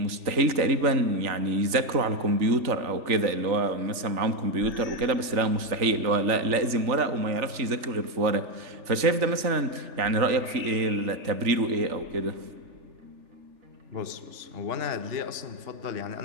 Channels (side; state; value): left; late; 3.4 ms